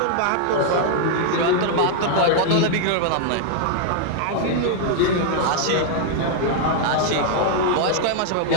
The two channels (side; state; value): both; different; correlation 0.00